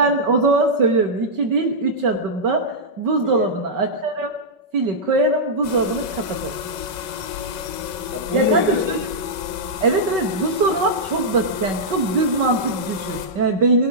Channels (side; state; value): left; late; 5.3 ms